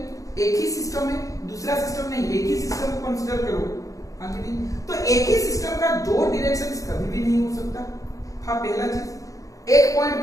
एक ही सिस्टम है, दूसरा सिस्टम नहीं, एक ही सिस्टम को कंसीडर करो, हाँ कि नहीं? तो एक ही सिस्टम का दो डायरेक्शंस कभी भी नहीं हो सकता। हाँ, पहला चीज, एक पॉइंट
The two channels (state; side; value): late; right; 0.16 ms